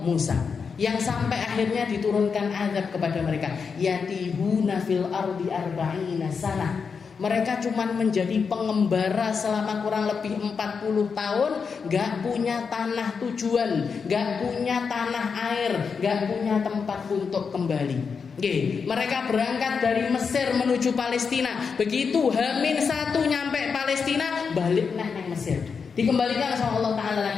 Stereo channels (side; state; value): right; quieter; 5.7 dB